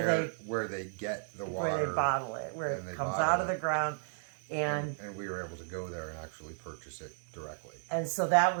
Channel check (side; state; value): left; silent; 55 dB below the other